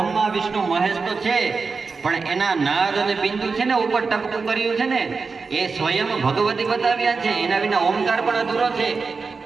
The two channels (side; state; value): left; quieter; 4.7 dB